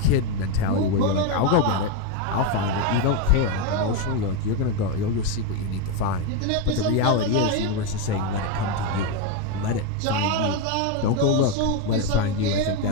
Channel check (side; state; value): both; different; correlation 0.03